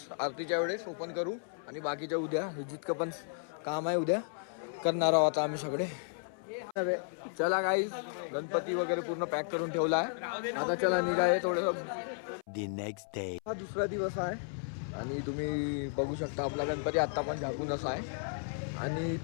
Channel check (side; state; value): right; silent; 55 dB below the other